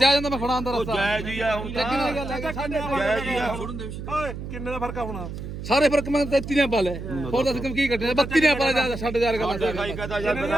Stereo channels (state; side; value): noise; right; hum, 8 dB below the sound